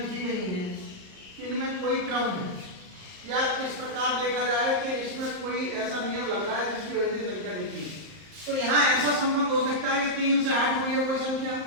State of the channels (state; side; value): late; left; 38 ms